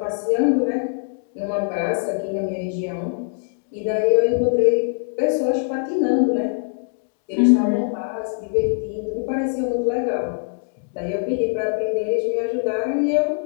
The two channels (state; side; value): silent; right; digital silence